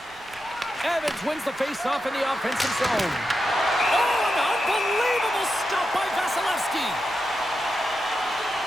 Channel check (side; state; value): right; noise; rumble, 27 dB below the sound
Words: Evans wins the face-off in the offensive zone. Oh, an unbelievable stop by Vasilevsky.